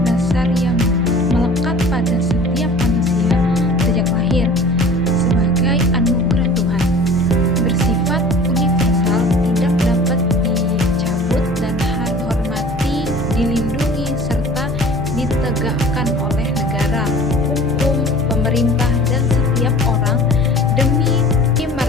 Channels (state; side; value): normal; both; correlation 0.45